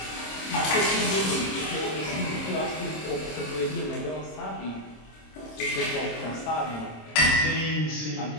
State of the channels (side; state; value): right; late; 26 ms